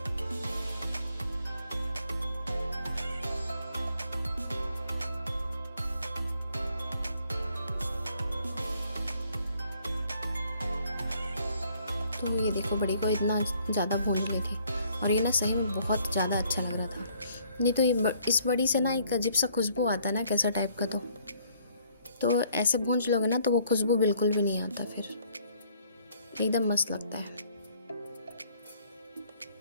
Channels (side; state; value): both; inverted; correlation -0.63